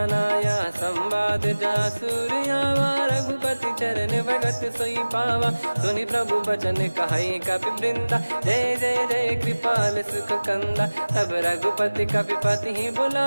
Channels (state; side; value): inverted; both; correlation -1.00